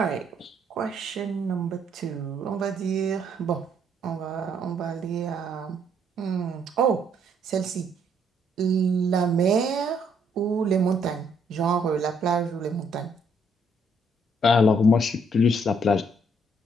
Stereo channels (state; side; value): normal; both; correlation 0.69